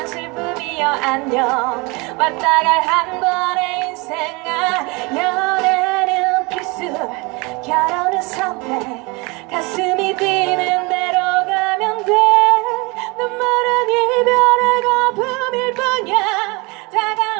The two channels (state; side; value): quieter; left; 27.0 dB